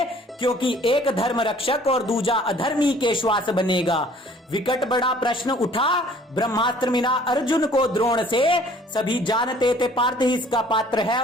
क्योंकि एक धर्म रक्षक और दूजा अधर्मी के श्वास बनेगा। विकट बड़ा प्रश्न उठा ब्रह्मास्त्र मिला अर्जुन को द्रोण से। सभी जानते थे पार्थ ही इसका पात्र है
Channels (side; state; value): both; normal; correlation 0.55